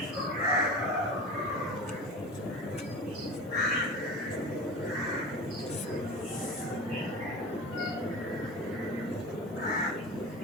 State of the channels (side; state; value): both; normal; correlation 0.32